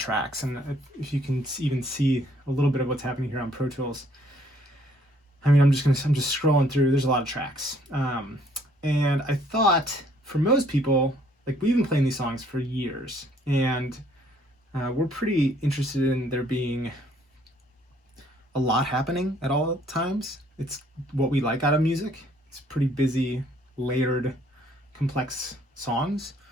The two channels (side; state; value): both; normal; correlation 0.63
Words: and if you can even see a little bit of what's happening here on Pro Tools, I mean, I'm just scrolling through. There's a lot of tracks, and I thought for most people, like we've been playing these songs for years, and we're pretty interested in there being a lot happening at all times. It's what we like out of music. It's pretty busy, layered, complex songs.